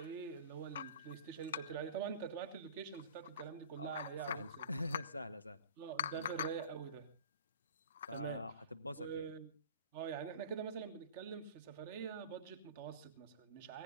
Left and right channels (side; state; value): both; inverted; correlation -0.40